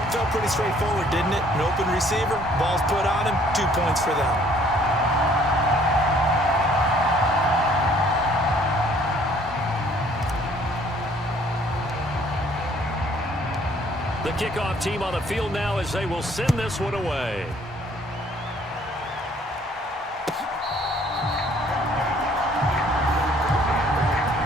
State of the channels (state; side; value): normal; both; correlation 0.59